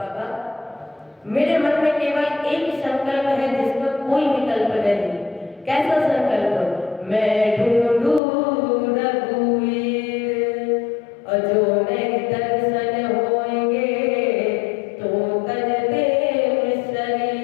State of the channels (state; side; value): drops out; right; at 8.2 s